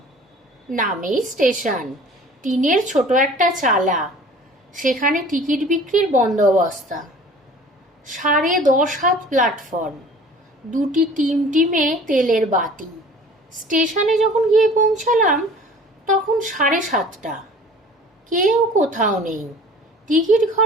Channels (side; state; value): both; normal; correlation 0.47